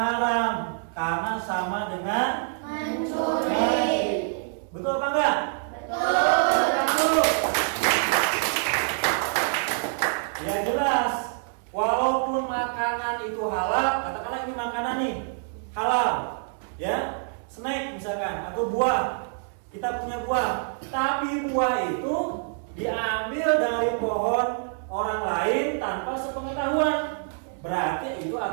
karena sama dengan Mencuri. Betul apa enggak? Betul. Ya jelas. Walaupun makanan itu halal, katakanlah ini makanan nih halal, ya, snack misalkan atau buah. Kita punya buah, tapi buah itu diambil dari pohon orang lain tanpa sepengetahuan. Berarti itu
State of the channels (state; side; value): silent; left; digital silence